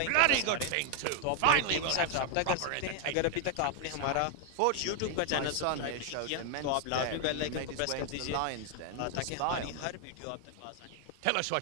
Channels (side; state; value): both; different; correlation 0.01